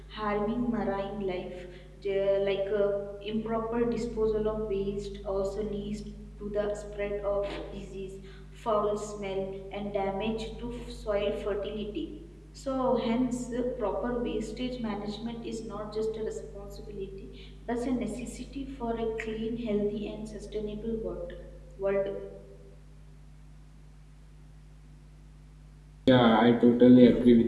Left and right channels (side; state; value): both; identical; correlation 1.00